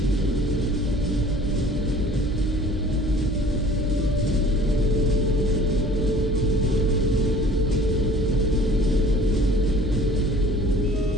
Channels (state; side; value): normal; both; correlation 0.50